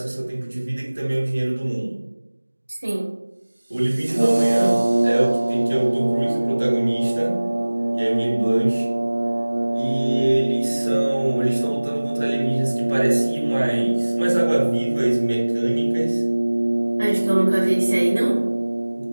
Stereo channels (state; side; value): inverted; both; correlation -1.00